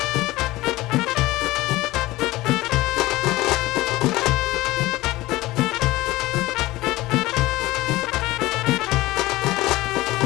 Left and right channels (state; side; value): quieter; right; 18.6 dB